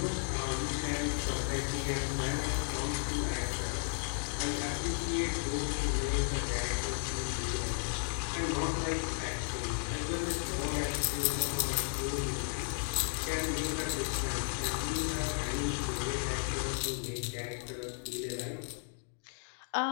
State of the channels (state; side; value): silent; right; 55 dB below the other